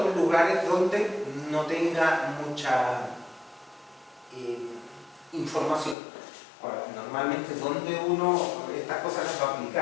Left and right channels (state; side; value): drops out; right; at 6.0 s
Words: lugares donde no tenga mucha información. Ahora, normalmente donde uno estas cosas las va a